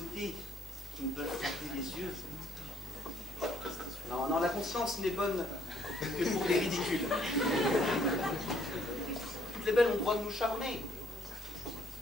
qui nous peuvent frapper les yeux. Non, non, la conscience n'est bonne que pour les ridicules. Toutes les belles ont le droit de nous charmer.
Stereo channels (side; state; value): both; normal; correlation 0.67